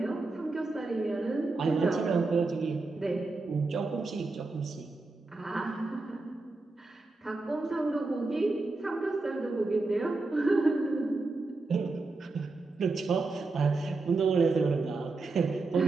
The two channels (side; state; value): left; quieter; 3.5 dB